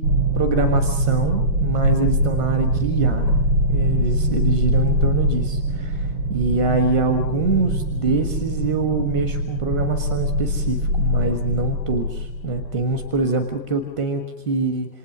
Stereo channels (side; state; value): right; late; 1.5 ms